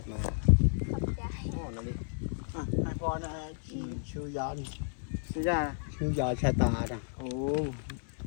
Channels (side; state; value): right; silent; 56 dB below the other